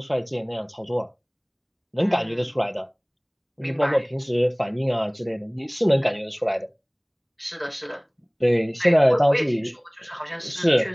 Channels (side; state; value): both; identical; correlation 1.00